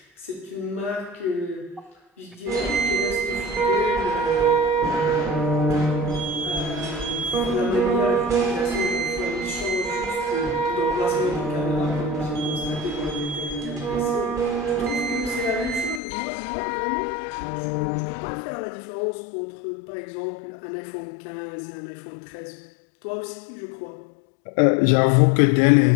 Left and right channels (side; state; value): right; drops out; at 16.0 s